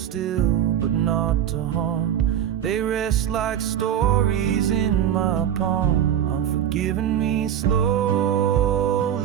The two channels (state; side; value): quieter; left; 9.9 dB